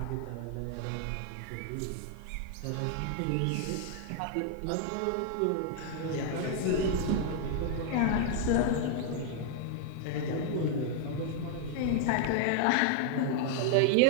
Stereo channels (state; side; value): different; both; correlation 0.00